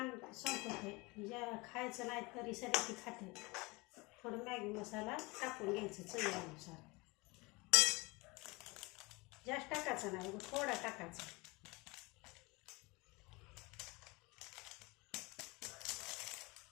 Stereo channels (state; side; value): quieter; right; 25.2 dB